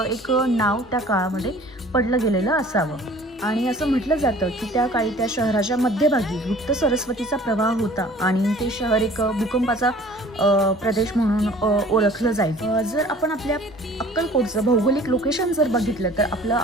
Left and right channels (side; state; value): both; normal; correlation 0.49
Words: एक नाव त्या काळामध्ये पडलं गेलेलं असावं. आणि असं म्हटलं जातं की त्या काळी त्या शहराच्या मध्यभागी गुप्त सरस्वतीचा प्रवाह होता आणि ते शहर एक भूकंपाचा प्रदेश म्हणून ओळखलं जाईल. जर आपण आपल्या अक्कलकोटचं भौगोलिक लोकेशन जर बघितलं तर आपलं